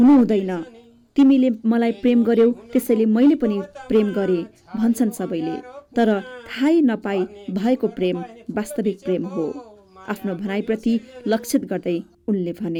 हुँदैन। तिमीले मलाई प्रेम गर्यौ, त्यसैले मैले पनि प्रेम गरेँ भन्छन् सबैले, तर थाहै नपाई भएको प्रेम वास्तविक प्रेम हो। आफ्नो भनाइप्रति लक्षित गर्दै उनले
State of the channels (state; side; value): identical; both; correlation 1.00